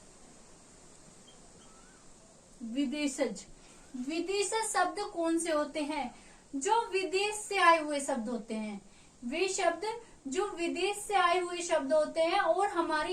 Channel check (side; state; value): both; identical; correlation 1.00